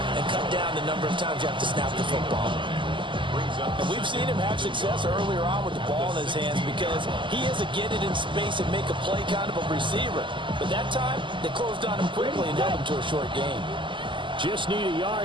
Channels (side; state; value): left; late; 0.24 ms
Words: and cut down the number of times you have to snap the football. And we've seen him have success earlier on with the ball in his hands because he is a get it in space and make a play kind of a receiver. But that time, they closed on him quickly and held him to a short game. Just need a